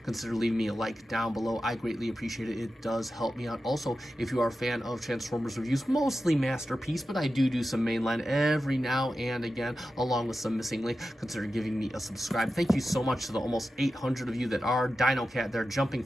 consider leaving me a like down below. I greatly appreciate it. It does help me out. Also, if you are a fan of Transformers reviews, mostly Masterpiece, but I do some mainline every now and again, along with some missing link, consider giving me a subscribe. Thank you so much to the almost 800 of you that are Dino Cat. They're jumping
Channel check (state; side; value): normal; both; correlation 0.92